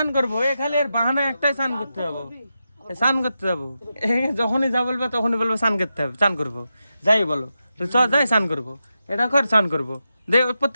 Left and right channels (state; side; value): inverted; both; correlation -0.89